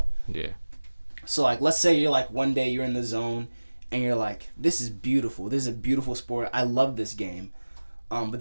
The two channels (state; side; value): inverted; both; correlation -1.00